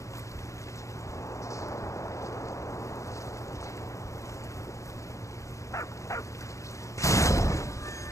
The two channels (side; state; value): right; late; 0.15 ms